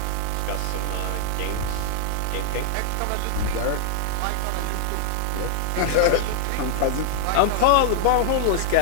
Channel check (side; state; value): both; different; correlation 0.00